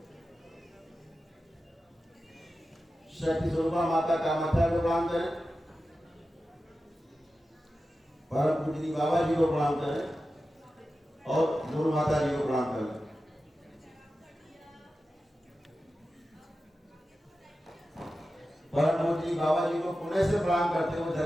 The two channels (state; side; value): normal; both; correlation 0.93